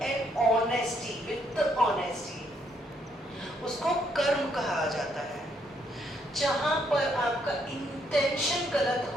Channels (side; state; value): both; normal; correlation 0.72